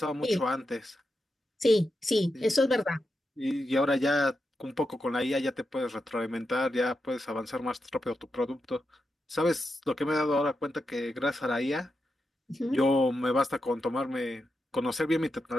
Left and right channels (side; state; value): both; normal; correlation 0.88